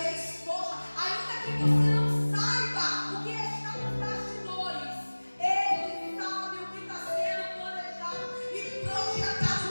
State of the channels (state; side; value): inverted; both; correlation -1.00